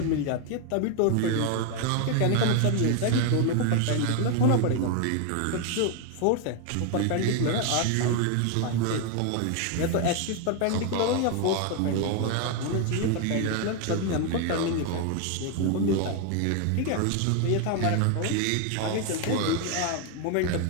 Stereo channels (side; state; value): both; different; correlation 0.01